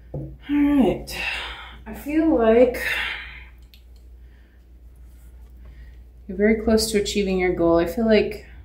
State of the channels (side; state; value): both; identical; correlation 1.00